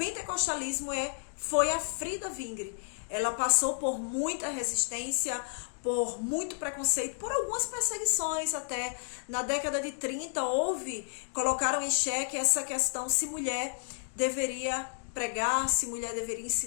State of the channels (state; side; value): silent; right; digital silence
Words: foi a Frida Wingre. Ela passou por muita resistência, por muito preconceito, por algumas perseguições até. Na década de 30 colocaram em xeque essa questão se mulher deveria pregar, se mulher deveria